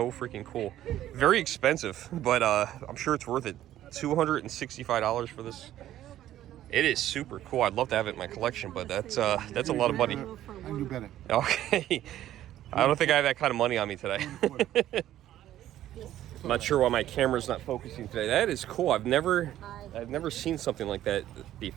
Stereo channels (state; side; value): quieter; left; 12.8 dB